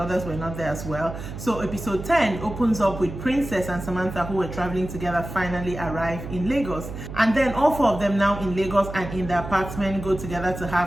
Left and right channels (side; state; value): right; noise; hum, 9 dB below the sound